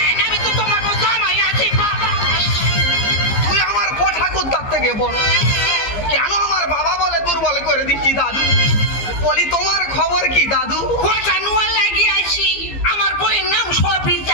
আমি তো তোমার জামাই আছি, বাবা। তুই আমার পোঠাকুর তার থেকে বড়, কেন আমার বাবা বলে দুর্বল করে দিচ্ছি দাদু? বলি তোমার খবর কি দাদু? ওটা নুয়া লাগিয়ে আছি। আমার বইয়ের নাম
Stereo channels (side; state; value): right; late; 15 ms